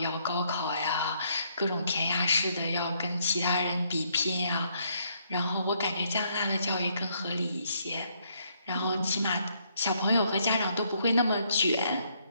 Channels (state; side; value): inverted; both; correlation -0.71